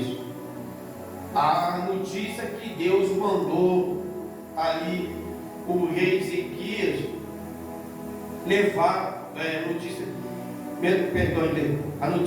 a notícia que Deus mandou ali o rei Ezequias levar, a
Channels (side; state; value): both; identical; correlation 1.00